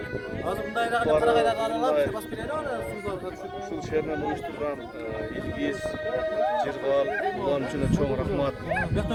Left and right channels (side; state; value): both; identical; correlation 1.00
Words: Азымдайдағы қарағайдағы аралап, бас береді оны Ушул шеринен уюштурган Илгиз, Жыргал, улан үчүн чоң рахмат.